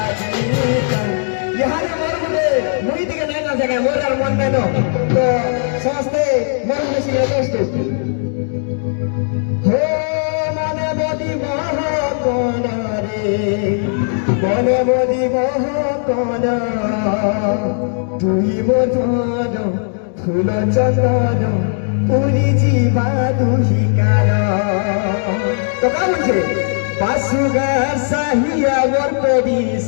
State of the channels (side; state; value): right; silent; 68 dB below the other